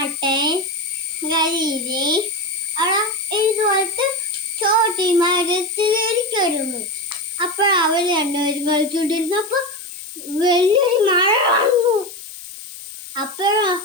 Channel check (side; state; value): left; noise; hiss, 15 dB below the sound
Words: കരിയില് അവിടെ ഇതുപോലത്തെ ചോട്ടി മരത്തിലിരിക്കുന്നു. അപ്പോൾ അവർ രണ്ടുപേരും കളിച്ചുകൊണ്ടിരുന്നപ്പോൾ വലിയൊരു മഴ വന്നു. അപ്പോഴോ